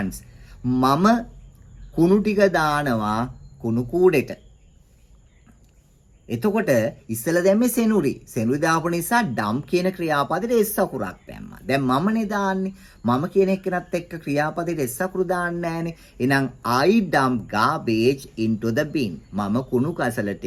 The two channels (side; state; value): both; identical; correlation 1.00